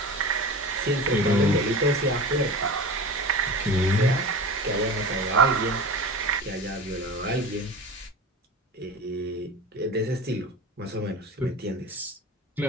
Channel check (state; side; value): normal; both; correlation 0.32